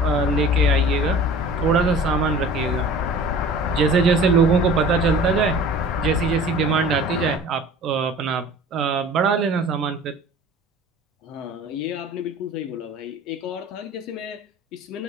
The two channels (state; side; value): normal; both; correlation 0.43